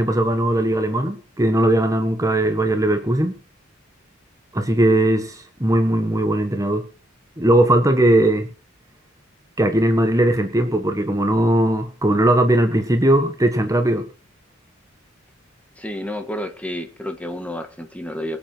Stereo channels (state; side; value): normal; both; correlation 0.76